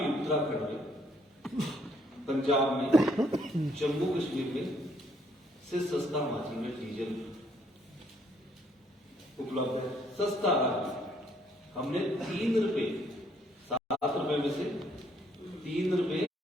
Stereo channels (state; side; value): normal; both; correlation 0.68